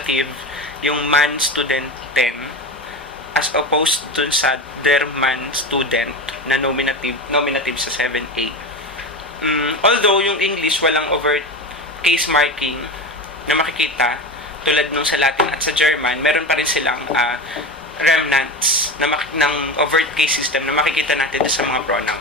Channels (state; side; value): normal; both; correlation 0.24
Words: yung man student 10, as opposed dun sa der man student na nominative sa 7A. Although yung English walang overt case marking na makikita, tulad nung sa Latin at sa German, meron pa rin silang remnants ng overt case system na makikita natin sa mga